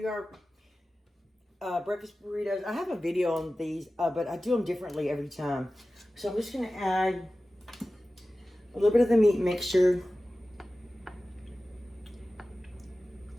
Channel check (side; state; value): both; normal; correlation 0.95